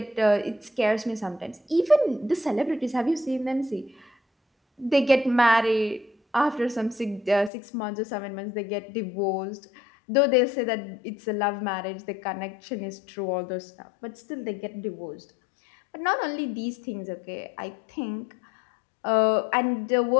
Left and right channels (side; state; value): right; drops out; at 7.5 s